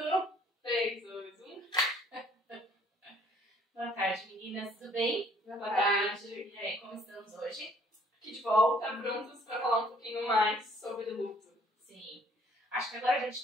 3, 2, 1. Boa tarde, meninas. Tudo bem? Boa tarde. E aí, como estamos hoje? Aqui de volta, prontos para falar um pouquinho mais sobre luto. Sim. Acho que agora a gente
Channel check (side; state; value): both; normal; correlation 0.60